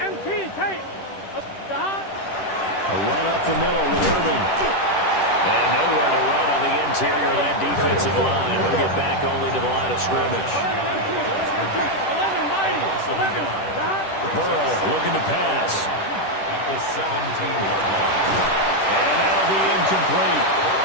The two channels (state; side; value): late; right; 10 ms